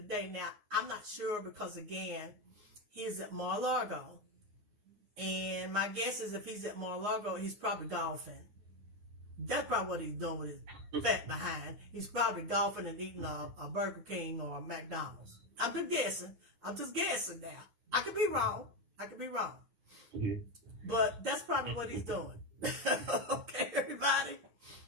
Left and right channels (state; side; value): late; left; 9.6 ms